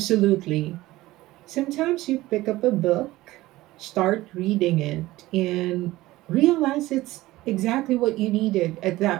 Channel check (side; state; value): left; quieter; 17.6 dB